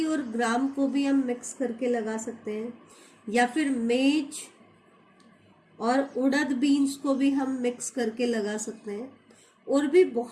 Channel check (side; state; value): both; identical; correlation 1.00